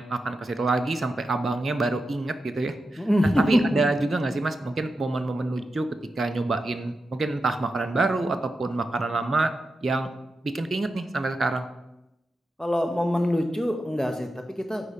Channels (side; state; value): both; normal; correlation 0.89